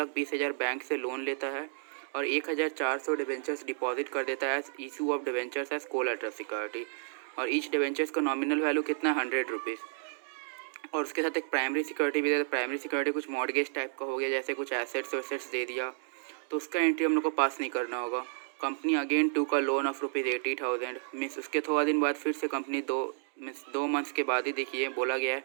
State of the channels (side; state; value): left; silent; digital silence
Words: बैंक से लोन लेता है और 1,400 डिवेंचर्स डिपॉजिट कर देता है issue of debentures as collateral security. और ईच डिवेंचर्स का नॉमिनल वैल्यू कितना है, ₹100। और उसके साथ एक प्राइमरी सिक्योरिटी भी देता है। प्राइमरी सिक्योरिटी कुछ मॉर्गेज टाइप का हो गया, जैसे कुछ एसेट्स वेसेट्स दे दिया, तो उसका एंट्री हम लोग को पास नहीं करना होगा। कंपनी अगेन टू का लोन ऑफ ₹80,000 मीन्स उसके थोड़ा दिन बाद फिर से कंपनी दो मंथ्स के बाद ही देखिए बोला गया है